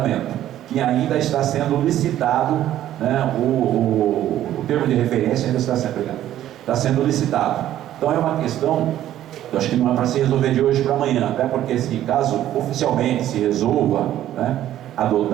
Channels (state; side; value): quieter; left; 12.5 dB